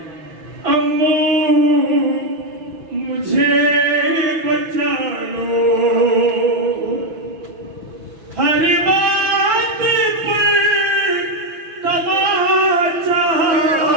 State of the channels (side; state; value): left; late; 6.1 ms